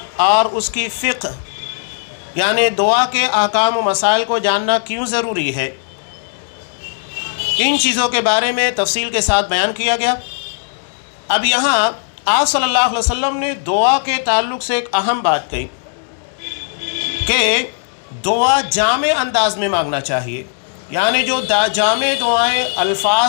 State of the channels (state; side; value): silent; right; digital silence